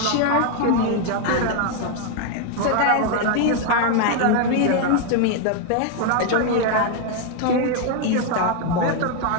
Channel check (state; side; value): different; both; correlation 0.00